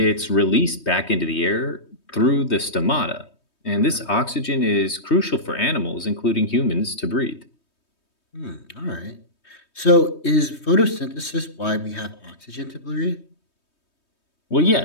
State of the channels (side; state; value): right; late; 3.2 ms